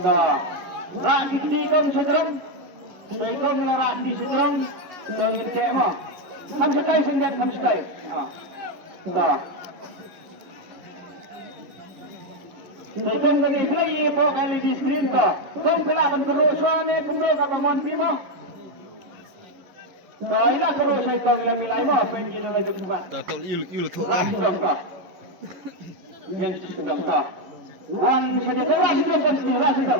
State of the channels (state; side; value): late; left; 11 ms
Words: Dah. Rak itu kong sedang. Saya kong rak di sedang. Dongin cek mah. Kamu sekai sendiri, kamu sekai. Dah. Saya kong tadi lagi pok kali di screen dah. Kong pelaban kerusuhan ni kumdo kata mon bimo. Dah ilah terus saya kong ilah milai mah apa yang kita lagi buat. Tahu il tu Ras dong kah? Yang sedang kah? Wan saja ras dong kan ras